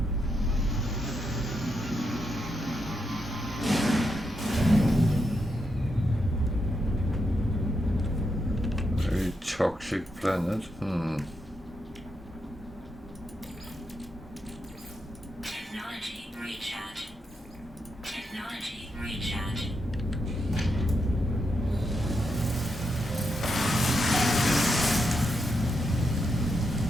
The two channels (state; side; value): normal; both; correlation 0.83